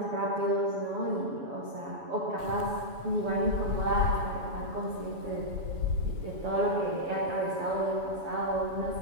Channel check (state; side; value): late; left; 7.1 ms